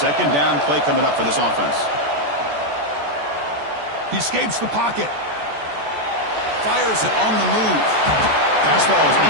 down play coming up for this offense. He escapes the pocket. Fires it on the move. Pass ball is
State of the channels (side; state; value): left; late; 14 ms